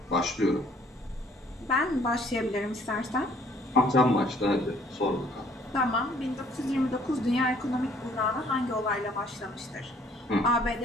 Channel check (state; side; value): normal; both; correlation 0.60